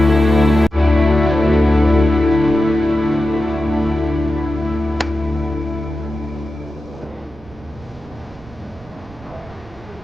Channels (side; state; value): right; noise; rumble, 22 dB below the sound